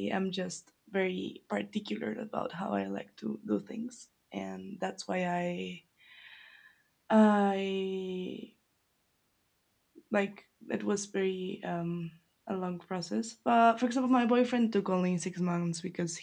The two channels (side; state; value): both; identical; correlation 1.00